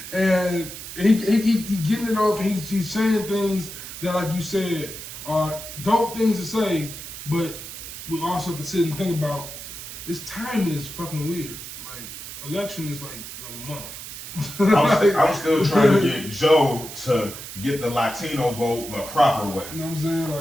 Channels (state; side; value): noise; right; hiss, 11 dB below the sound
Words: And he getting it off, and he's saying things that, like you said, are dope things to say, but we also have to sit and think about, this timing is fucking weird. Like, election is like a month. I'm still trying to get Joe to get the Latino vote the proper way. You know what I'm saying?